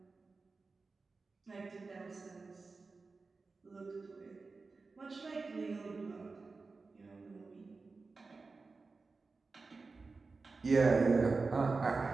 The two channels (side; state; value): left; quieter; 4.1 dB